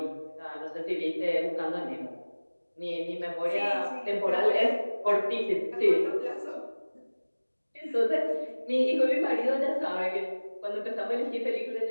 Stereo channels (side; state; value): both; inverted; correlation -1.00